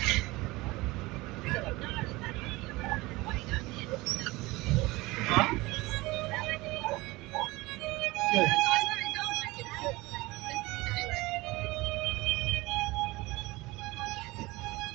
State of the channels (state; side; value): quieter; left; 21.3 dB